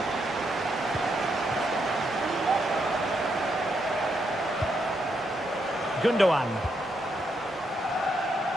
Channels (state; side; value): normal; both; correlation 0.79